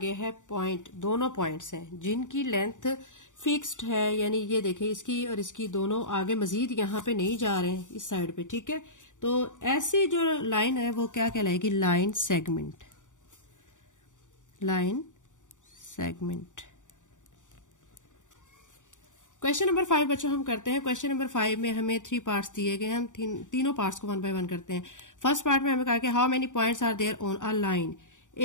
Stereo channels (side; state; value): right; late; 0.86 ms